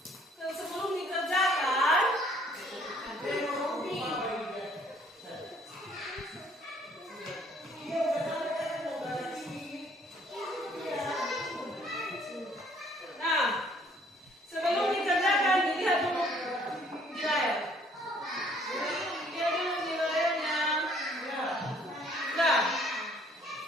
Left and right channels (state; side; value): normal; both; correlation 0.61